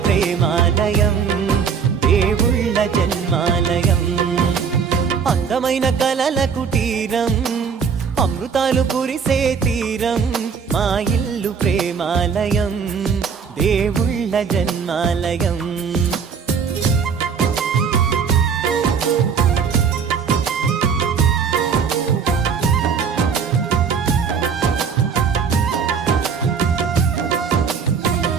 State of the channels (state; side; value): quieter; left; 6.3 dB